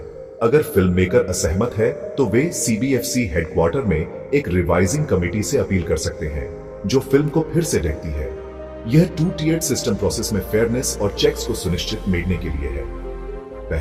अगर फिल्म मेकर असहमत है तो वे सीबीएफसी हेडक्वार्टर में एक रिवाइजिंग कमेटी से अपील कर सकते हैं, जो फिल्म को फिर से देखती है। यह 2 tiered सिस्टम प्रोसेस में फेयरनेस और चेक्स को सुनिश्चित मेडने के लिए है।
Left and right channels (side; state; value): both; identical; correlation 1.00